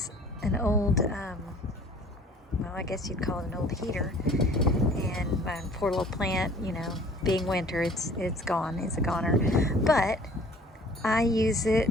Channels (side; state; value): both; normal; correlation 0.51